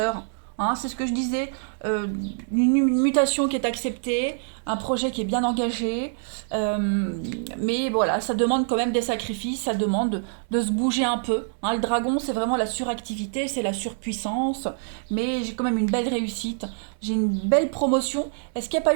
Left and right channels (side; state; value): left; silent; 62 dB below the other